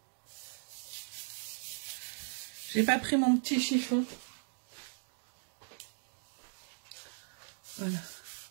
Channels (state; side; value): silent; left; digital silence